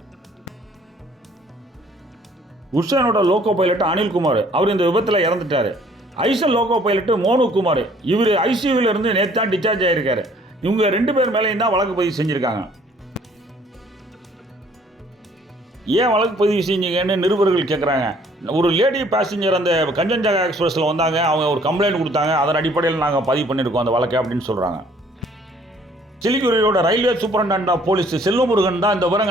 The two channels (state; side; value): normal; both; correlation 0.59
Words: குட்ஷைனோட லோகோ பைலட் அனில்குமார் அவர் இந்த விபத்தில் இறந்துட்டார். ஐசன் லோகோ பைலட் மோனு குமார் இவர் ஐசியூவில் இருந்து நேற்று தான் டிஸ்சார்ஜ் ஆகியிருக்காரு. இவங்க 2 பேர் மேலேயும் தான் வழக்கு பதிவு செஞ்சுருக்காங்க. ஏன் வழக்கு பதிவு செஞ்சீங்கன்னு நிருபர்கள் கேட்குறாங்க. ஒரு லேடி பேசஞ்சர் அந்த கஞ்சன்ஜங்கா எக்ஸ்பிரஸில் வந்தாங்க, அவங்க ஒரு கம்ப்ளைண்ட் கொடுத்தாங்க, அதன் அடிப்படையில் நாங்கள் பதிவு பண்ணியிருக்கோம் அந்த வழக்கை அப்படின்னு சொல்கிறாங்க. சிலிகுரியோட railway superintendent of police Selvamurugan தான் இந்த